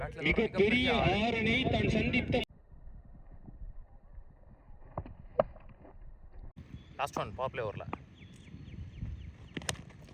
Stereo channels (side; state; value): both; identical; correlation 1.00